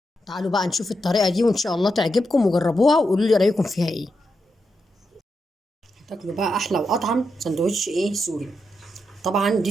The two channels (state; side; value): normal; both; correlation 0.85